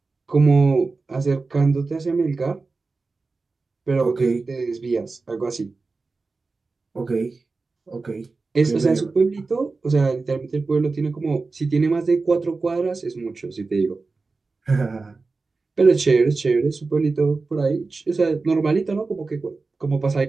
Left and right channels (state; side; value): quieter; left; 3.9 dB